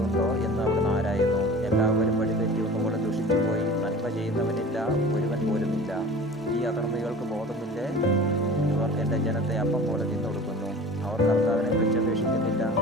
എന്ന് അവിടുന്ന് ആരായുന്നു. എല്ലാവരും വഴിതെറ്റി ഒന്നുകൂടെ ദുഷിച്ചുപോയി. നന്മ ചെയ്യുന്നവനില്ല, ഒരുവൻ പോലുമില്ല. ഈ അധർമ്മികൾക്ക് ബോധമില്ലേ? ഇവർ എൻ്റെ ജനത്തെ അപ്പം പോലെ തിന്നൊടുക്കുന്നു. അവർ കർത്താവിനെ വിളിച്ചപേക്ഷിക്കുന്നില്ല.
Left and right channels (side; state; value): both; normal; correlation 0.40